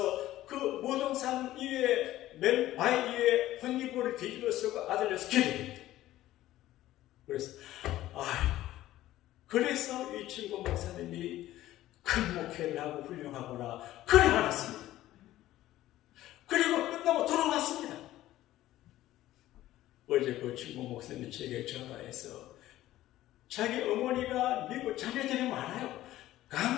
그 무등산 위에 맨 바위 위에 혼이불을 뒤집어 쓰고 아들려서 기도했대. 그래서 이 친구 목사님이 큰 목회를 하고 훌륭하구나 그래 알았습니다. 그리고 끝나고 돌아왔습니다. 어제 그 친구 목사님이 제게 전화해서 자기 어머니가 미국 자녀들이 많아요.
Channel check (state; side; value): quieter; right; 14.8 dB